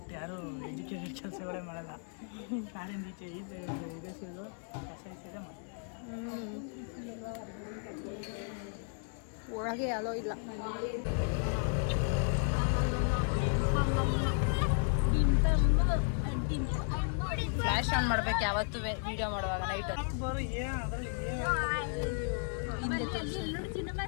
ಯಾರು ಎಜುಕೇಟೆಡ್ ಕೆಲಸಗಳೇ ಮಾಡಲ್ಲ. ಕಾರಿಂದ ಈಚೆ ಇದೆ ಸಿಗೋದು ಕಸ ಇದೆ ಮಾಡ್ತಾರೆ. ಒಳಗೆ ಅಲೋ ಇಲ್ಲ. ಫ್ಲಾಶ್ ಆನ್ ಮಾಡ್ಬೇಕು ಯಾವತ್ತೂ ವಿಡಿಯೋ ಮಾಡುವಾಗ ನೈಟ್.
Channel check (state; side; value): silent; right; 55 dB below the other